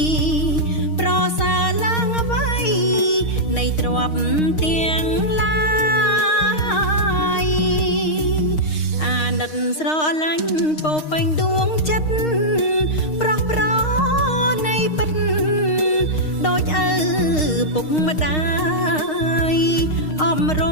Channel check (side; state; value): right; late; 6.5 ms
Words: ប្រសើរឡើងអ្វីនៃទ្រព្យទាំងឡាយអាណិតស្រឡាញ់ពោពេញដួងចិត្តប្រោះប្រនៃពិតដូចឪពុកម្ដាយអំរ